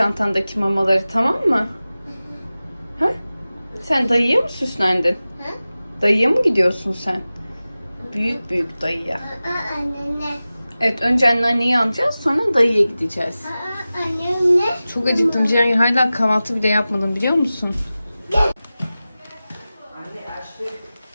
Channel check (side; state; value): both; inverted; correlation -0.96